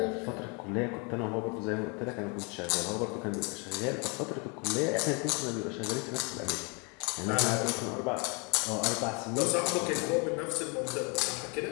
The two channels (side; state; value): right; quieter; 32.7 dB